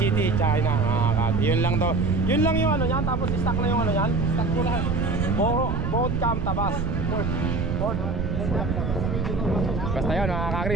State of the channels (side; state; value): right; noise; rumble, 1 dB below the sound